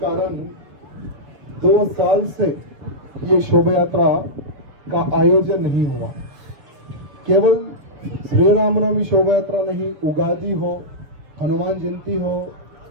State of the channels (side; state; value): left; late; 7.0 ms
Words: कारण 2 साल से ये शोभा यात्रा का आयोजन नहीं हुआ। केवल श्री रामनवमी शोभा यात्रा नहीं, उगादी हो, हनुमान जयंती हो,